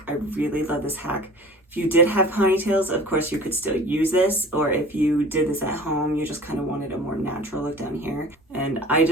I really love this hack. If you did have ponytails, of course you could still use this, or if you did this at home, you just kind of wanted a more natural look down here. And I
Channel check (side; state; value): both; normal; correlation 0.42